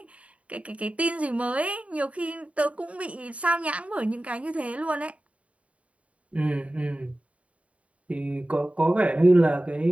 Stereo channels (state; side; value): late; left; 0.065 ms